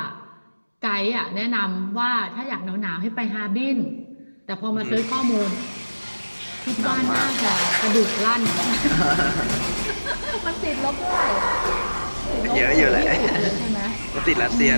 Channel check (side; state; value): both; inverted; correlation -1.00